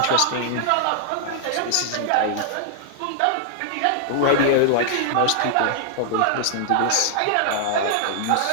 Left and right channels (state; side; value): different; both; correlation -0.01